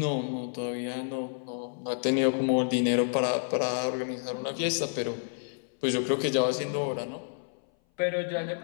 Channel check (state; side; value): silent; right; 57 dB below the other